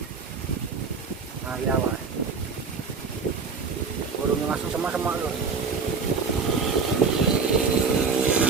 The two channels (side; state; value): left; quieter; 5.0 dB